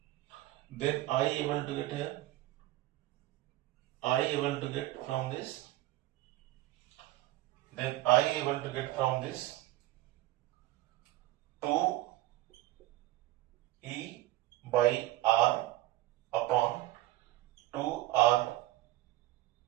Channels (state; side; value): quieter; left; 16.6 dB